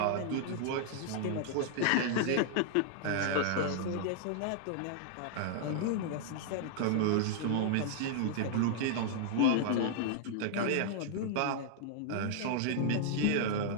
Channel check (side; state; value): both; different; correlation -0.01